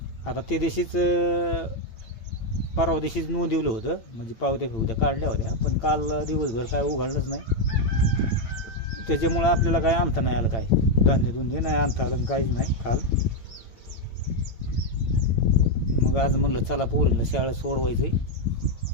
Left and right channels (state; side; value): late; right; 8.9 ms